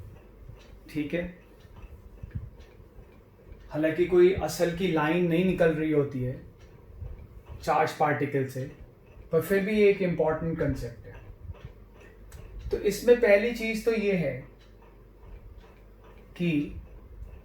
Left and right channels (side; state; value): both; identical; correlation 1.00